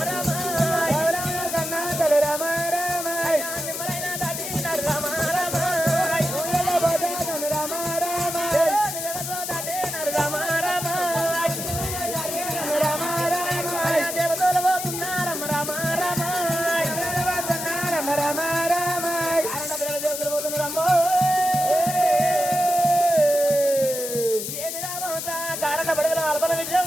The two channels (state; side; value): noise; left; hiss, 5 dB below the sound